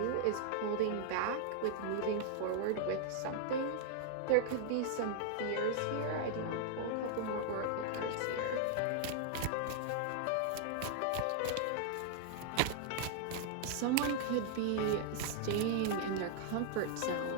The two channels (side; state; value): both; different; correlation -0.01